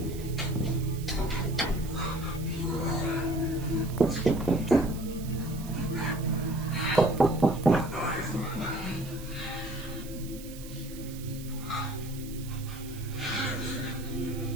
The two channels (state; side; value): noise; right; hiss, 16 dB below the sound